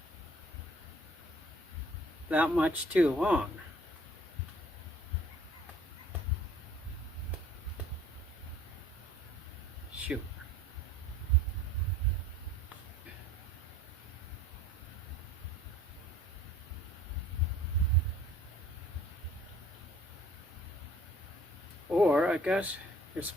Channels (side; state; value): both; normal; correlation 0.54